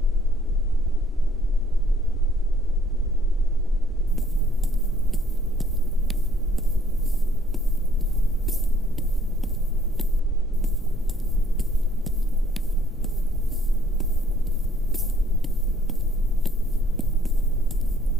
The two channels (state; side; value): normal; both; correlation 0.62